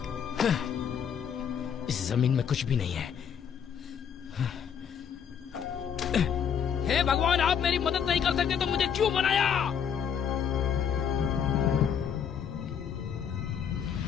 इस जमीन में कुछ भी नहीं है। हे भगवान, आप मेरी मदद नहीं कर सकते तो मुझे क्यों बनाया?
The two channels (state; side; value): quieter; right; 7.8 dB